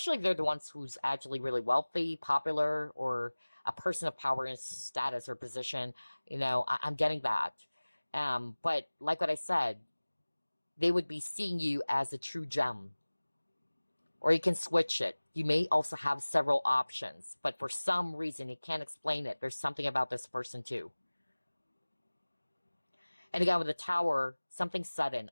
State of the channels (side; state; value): both; inverted; correlation -1.00